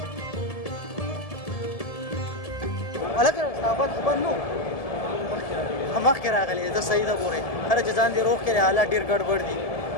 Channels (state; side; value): late; right; 1.7 ms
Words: ولکه صحابت خبر نو مخکې راغلی زه صحیح ده ګورې هره چې ځان دې روغ کړې حالات ډېر ګډوډ دي